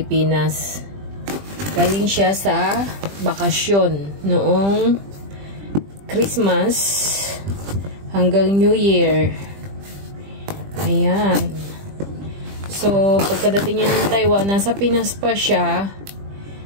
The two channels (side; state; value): left; late; 20 ms